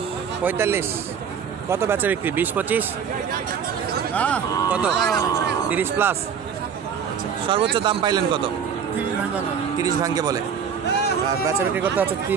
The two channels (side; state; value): left; quieter; 7.2 dB